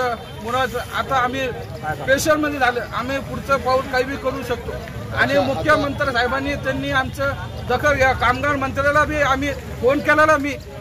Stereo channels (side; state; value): both; identical; correlation 1.00